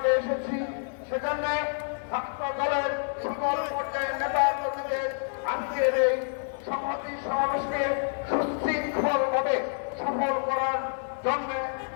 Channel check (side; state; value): right; silent; digital silence